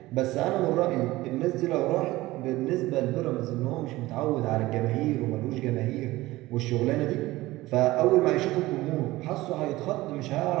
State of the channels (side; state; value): left; quieter; 18.4 dB